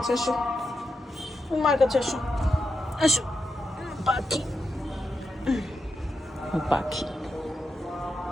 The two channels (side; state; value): both; normal; correlation 0.87